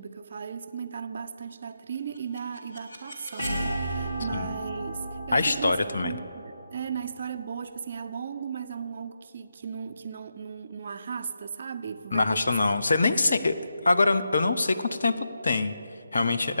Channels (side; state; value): both; inverted; correlation -0.85